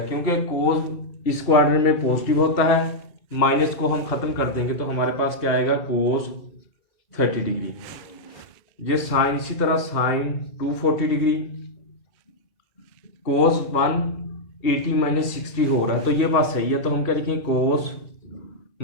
क्योंकि कोस इस क्वाड्रेंट में पॉजिटिव होता है, माइनस को हम खत्म कर देंगे तो हमारे पास क्या आएगा कोस 30 डिग्री। ये साइन इसी तरह साइन 240 डिग्री, कोस 180 माइनस 60 हो रहा है तो ये बात सही है, तो हम क्या लिखेंगे cos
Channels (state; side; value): late; right; 2.7 ms